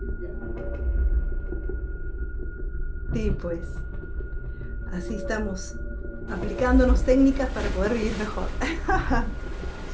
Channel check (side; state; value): both; identical; correlation 1.00